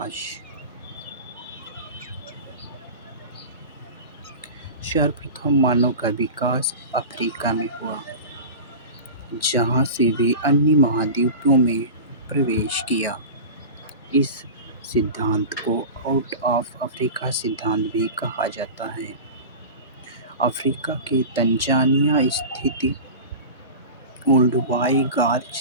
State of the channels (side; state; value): both; inverted; correlation -0.30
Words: सर्वप्रथम मानव का विकास अफ्रीका में हुआ, जहाँ से वे अन्य महाद्वीपों में प्रवेश किया। इस सिद्धांत को आउट ऑफ अफ्रीका सिद्धांत भी कहा जाता है। अफ्रीका के तंजानिया स्थित ओल्डुवाई गार्ज